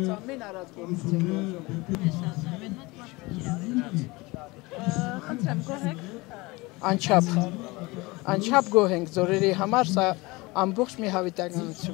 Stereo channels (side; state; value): right; quieter; 23.3 dB